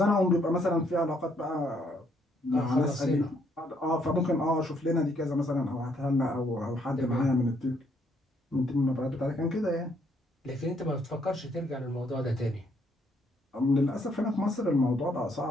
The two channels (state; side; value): normal; both; correlation 0.70